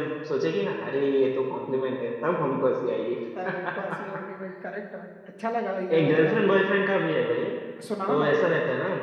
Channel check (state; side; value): identical; both; correlation 1.00